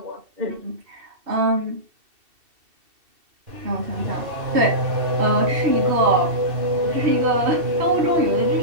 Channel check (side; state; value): left; late; 2.7 ms